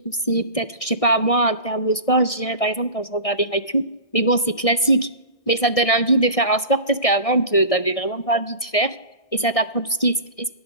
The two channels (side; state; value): right; late; 1.6 ms